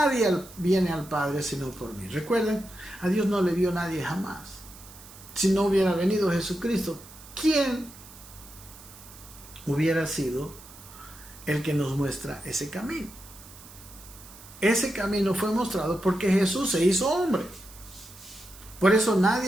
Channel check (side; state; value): right; noise; hiss, 19 dB below the sound